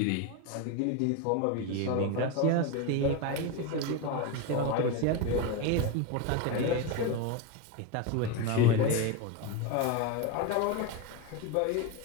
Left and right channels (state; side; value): different; both; correlation 0.04